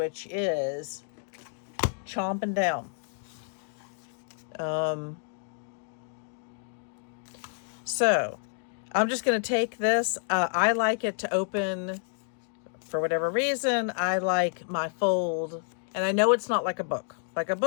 is chomping down. So I'm just going to take this. I like it to open, for whatever reason, I like my fold, and I know it's not like a book. Like a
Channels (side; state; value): right; silent; digital silence